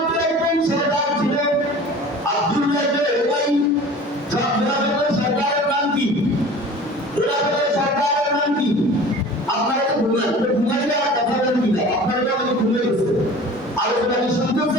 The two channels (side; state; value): both; normal; correlation 0.42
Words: একজন সরদার ছিল